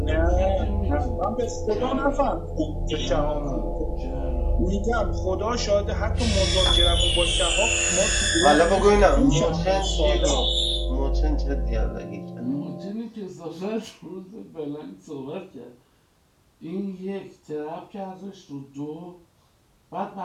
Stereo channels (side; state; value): both; identical; correlation 1.00